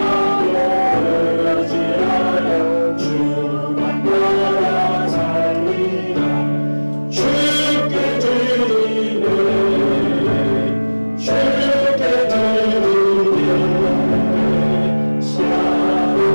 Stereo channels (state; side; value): inverted; both; correlation -1.00